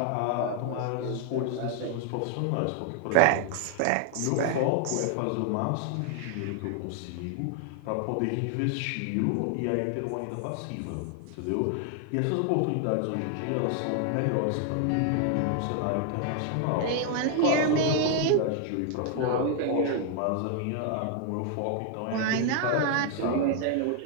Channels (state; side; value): different; both; correlation 0.00